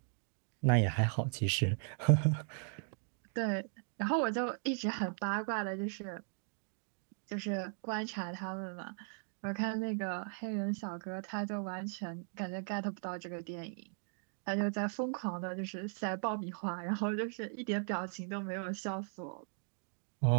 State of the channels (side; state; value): left; silent; 53 dB below the other